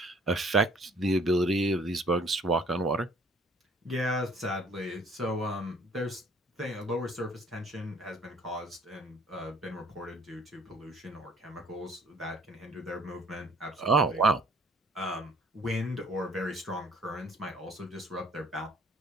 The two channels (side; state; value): both; normal; correlation 0.57